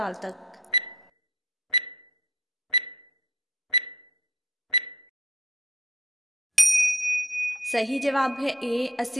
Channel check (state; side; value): normal; both; correlation 0.56